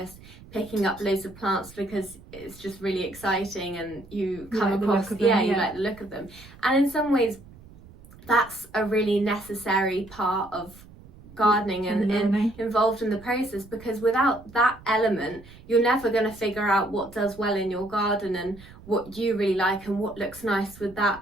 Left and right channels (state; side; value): noise; right; rumble, 21 dB below the sound